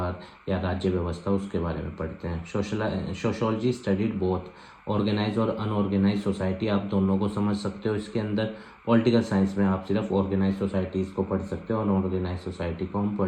या राज्य व्यवस्था, उसके बारे में पढ़ते हैं। सोशोलॉजी स्टडीड बोथ ऑर्गेनाइज और अनऑर्गेनाइज सोसाइटी, आप दोनों को समझ सकते हो इसके अंदर। पॉलिटिकल साइंस में आप सिर्फ ऑर्गेनाइज सोसाइटीज़ को पढ़ सकते हो और अनऑर्गेनाइज सोसाइटी को हम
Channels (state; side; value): identical; both; correlation 1.00